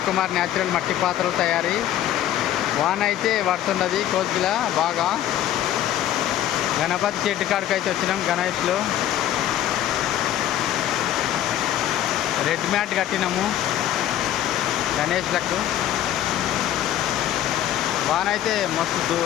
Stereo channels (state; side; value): quieter; right; 11.9 dB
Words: న్యాచురల్ మట్టి పాత్రలు తయారీ. వాన అయితే పడుతున్నది కోసిలా బాగా. గణపతి చెట్టు కాడికి అయితే వచ్చినాం. గణేష్లో రెడ్ మ్యాట్ కట్టినాము గణేష్లకు. వాన అయితే మస్తు